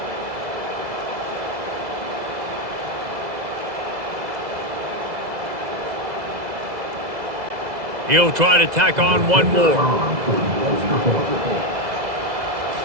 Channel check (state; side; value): late; left; 2.0 ms